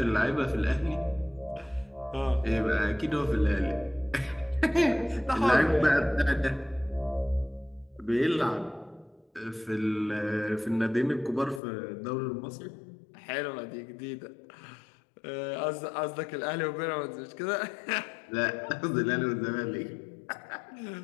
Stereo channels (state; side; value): drops out; right; at 11.6 s